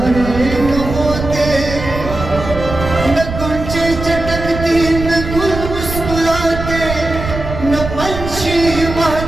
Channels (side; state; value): right; noise; rumble, 7 dB below the sound